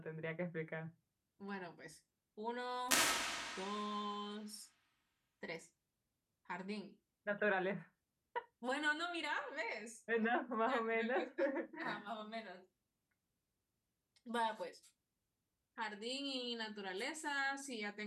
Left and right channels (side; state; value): both; identical; correlation 1.00